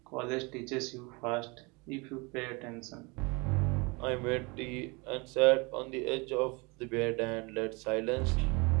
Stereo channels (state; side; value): quieter; left; 28.0 dB